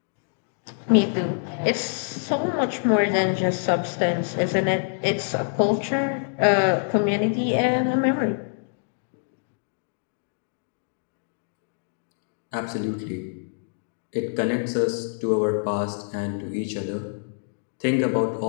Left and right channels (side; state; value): right; silent; digital silence